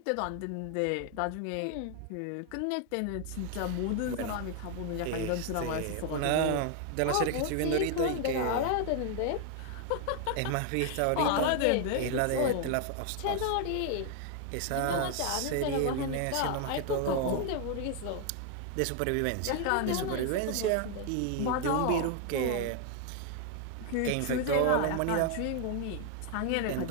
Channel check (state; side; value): different; both; correlation 0.00